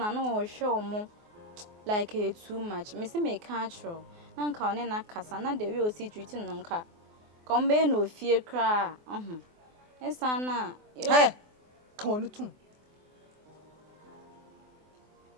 na wo hwe omo like too much. Me say me catch na nka one na kasa na the way o si treat no nka kombe no fie kra esa na ka wonu tum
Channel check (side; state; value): left; late; 24 ms